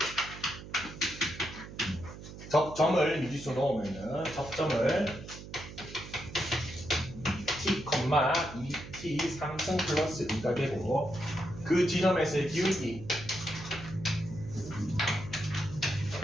점을 미지수 넣으면은 접점을 t, 2t 3승 플러스 2가 되고 그 지점에서의 기울기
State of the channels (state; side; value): noise; right; hum, 13 dB below the sound